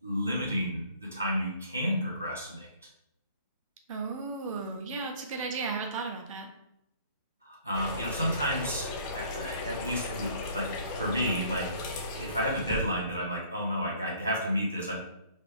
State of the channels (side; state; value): both; inverted; correlation -0.55